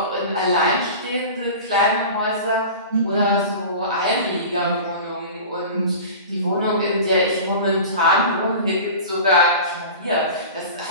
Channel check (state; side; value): inverted; both; correlation -0.35